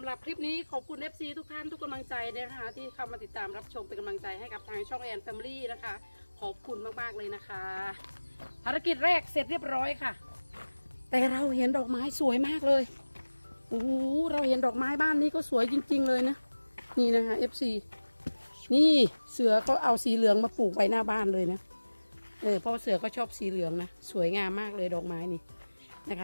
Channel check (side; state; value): both; inverted; correlation -1.00